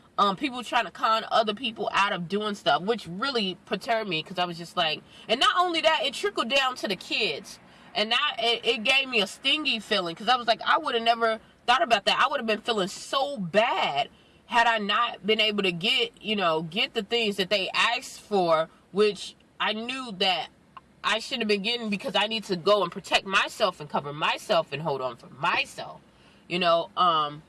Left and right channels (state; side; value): identical; both; correlation 1.00